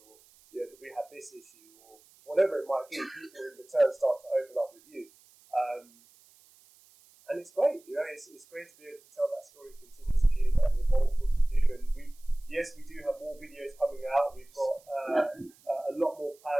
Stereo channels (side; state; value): right; noise; hiss, 28 dB below the sound